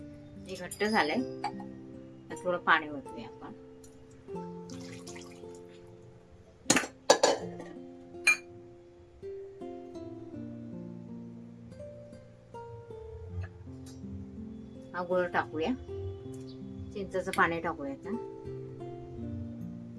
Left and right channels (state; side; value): identical; both; correlation 1.00